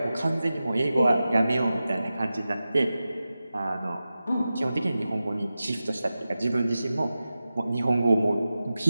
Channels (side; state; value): both; inverted; correlation -0.94